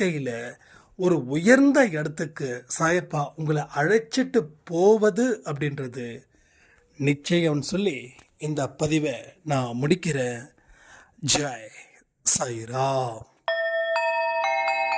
ஒரு உயர்ந்த இடத்துக்கு சாயப்பா உங்களை அழைச்சிட்டு போவது அப்படின்றது நிச்சயம் சொல்லி இந்த பதிவை நான் முடிக்கிறேன். ஜெய் சாய்ராம்.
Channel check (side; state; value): both; identical; correlation 1.00